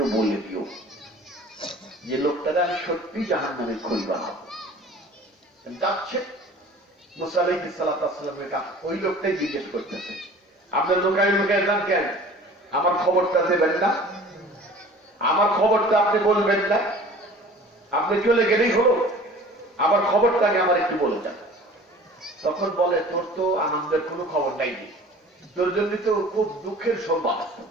বলে দিও যে লোকটাকে আমি সত্যি জাহান্নামের খড়ি বানাবো। যাচ্ছে মুসা আলাইহিস সালামের কাছে ওই লোকটাই জিজ্ঞেস করতেছে, আপনার লোকায় লোকায় যান কেন? আমার খবরটা দেবেন না? আমার খবরটা আপনি বলবেন না? আপনি চলে গেলেই হলো, আমার খবরটাকে আমার একটু বলে যান। তখন বলে, তোর তো আনন্দের কোনো খবর নাই, তোর জন্য তো খুব দুঃখের সংবাদ।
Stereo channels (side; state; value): both; normal; correlation 0.45